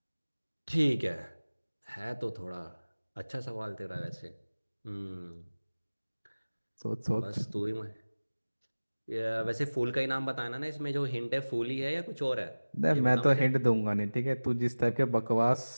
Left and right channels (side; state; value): both; inverted; correlation -1.00